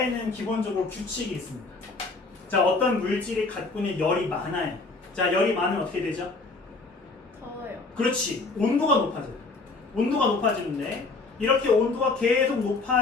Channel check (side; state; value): right; quieter; 3.7 dB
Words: 기본적으로 규칙이 있습니다. 자, 어떤 물질이 갖고 있는 열이 많아요. 자, 열이 많으면 어떻게 되죠? 더워요. 그렇지. 온도가 높아져요. 온도가 높아지는데 이렇게 온도가 계속